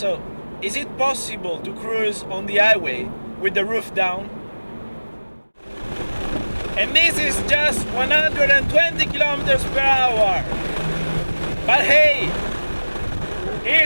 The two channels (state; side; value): inverted; both; correlation -1.00